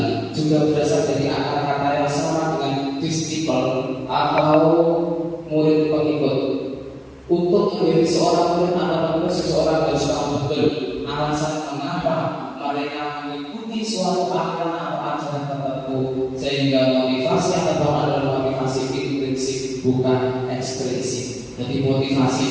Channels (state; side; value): identical; both; correlation 1.00